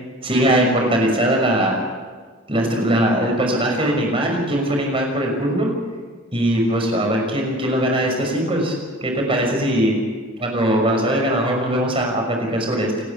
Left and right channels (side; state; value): both; normal; correlation 0.43